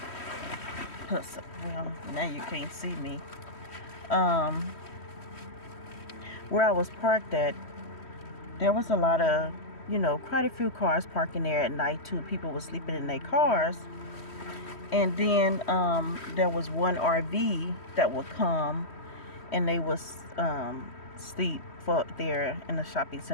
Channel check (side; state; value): right; late; 3.1 ms